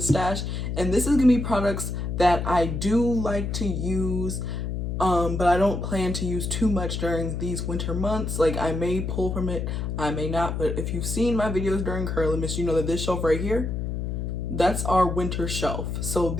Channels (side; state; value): left; noise; hum, 3 dB below the sound